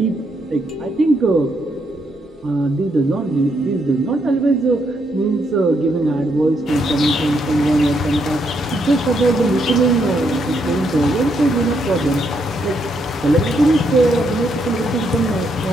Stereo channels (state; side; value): normal; both; correlation 0.76